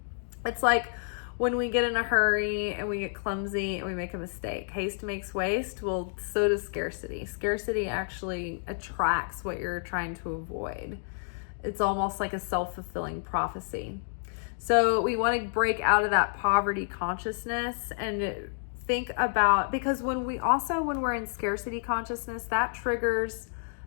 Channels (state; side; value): silent; right; digital silence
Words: It's like when we get in a hurry and we get clumsy and we make a mistake. Haste makes waste. Well, so does scarcity. Scarcity actually attracts what you're trying to avoid. It's almost like a self-fulfilling prophecy. So we want to break out of that poverty consciousness and think about, because when we're in scarcity consciousness, that triggers